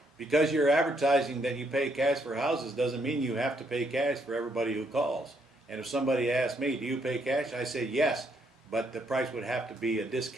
Because you're advertising that you pay cash for houses doesn't mean you have to pay cash for everybody who calls. And if somebody asks me, do you pay cash? I say yes, but the price would have to be a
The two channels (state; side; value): normal; both; correlation 0.73